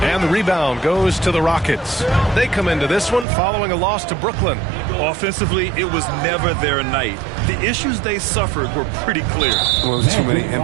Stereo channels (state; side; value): drops out; left; at 3.2 s